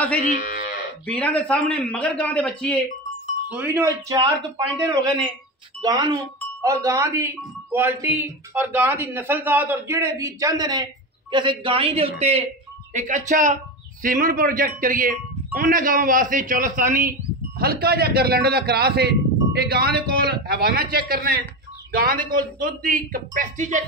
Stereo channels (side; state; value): both; normal; correlation 0.21